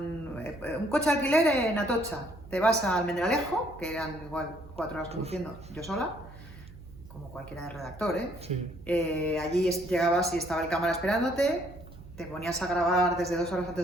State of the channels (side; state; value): right; noise; hum, 18 dB below the sound